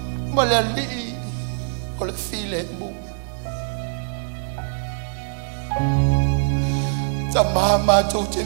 ma le alii o le file mu. Ta maha mātou te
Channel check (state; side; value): silent; left; 63 dB below the other